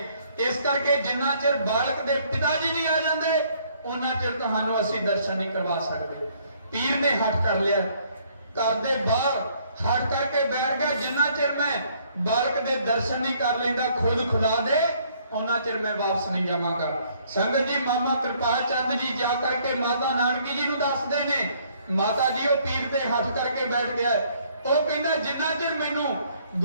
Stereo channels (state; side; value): inverted; both; correlation -0.64